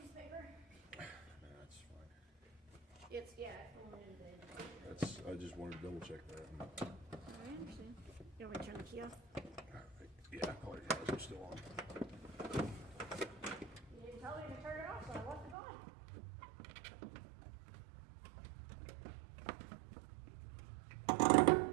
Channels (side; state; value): left; drops out; at 15.6 s